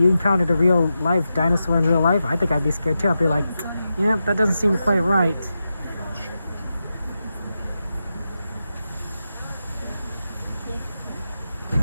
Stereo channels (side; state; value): both; inverted; correlation -0.90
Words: encountered a real life dinosaur in real life, I think I'd be scared too. I'd be like, yeah, that doesn't seem quite right.